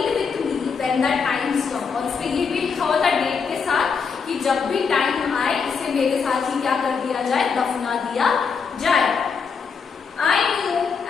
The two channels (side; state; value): right; quieter; 5.8 dB